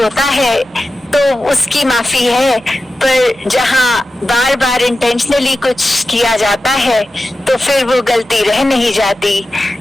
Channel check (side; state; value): both; normal; correlation 0.93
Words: है तो उसकी माफी है, पर जहाँ बार बार इंटेंशनली कुछ किया जाता है तो फिर वो गलती रह नहीं जाती।